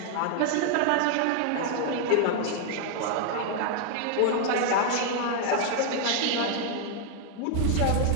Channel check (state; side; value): different; both; correlation 0.00